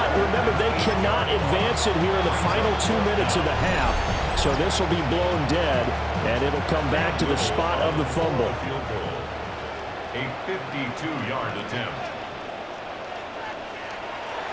remember, they cannot advance it here in the final 2 minutes of the half. So this will be blown dead, and it'll come back to the spot of the fumble. A 52-yard attempt.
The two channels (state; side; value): identical; both; correlation 1.00